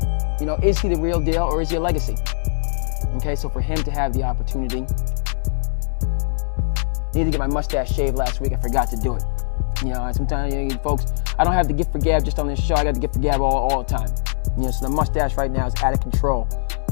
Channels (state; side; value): silent; right; 65 dB below the other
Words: Is he the real deal or is he a legacy? Okay, so for him to have the opportunity, I need to get my mustache shaved last week. I forgot to do it. Sometimes, folks, I don't have the gift for gab just on this show. I got the gift for gab all the time. So the mustache right now is out of control.